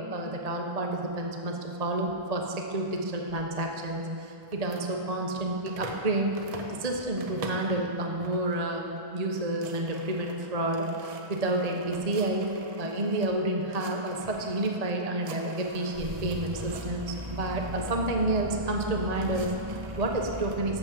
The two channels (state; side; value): late; left; 1.8 ms